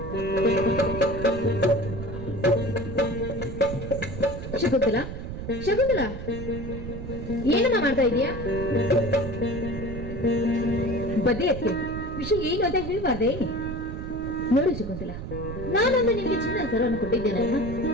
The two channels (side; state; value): right; noise; rumble, 8 dB below the sound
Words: ಶಕುಂತಲ, ಶಕುಂತಲ, ಏನಮ್ಮ ಮಾಡ್ತಾ ಇದೀಯಾ? ಬದ್ದೆ ಅತ್ತೆ, ವಿಷಯ ಏನು ಅಂತ ಹೇಳ್ಬಾರ್ದೆ? ನೋಡು ಶಕುಂತಲ, ನಾನೊಂದು ನಿನ್ಗೆ ಚಿನ್ನ ಸರವನ್ನು ಕೊಟ್ಟಿದ್ದೇನಲ್ಲ,